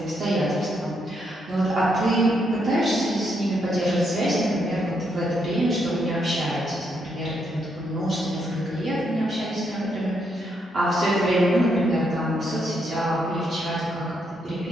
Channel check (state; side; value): normal; both; correlation 0.77